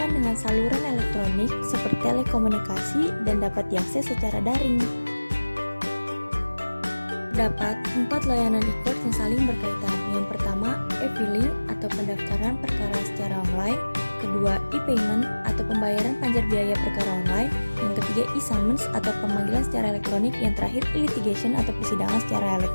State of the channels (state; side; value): inverted; both; correlation -1.00